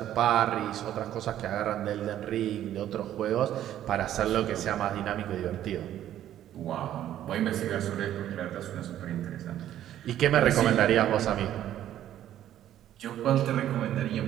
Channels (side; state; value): left; quieter; 11.8 dB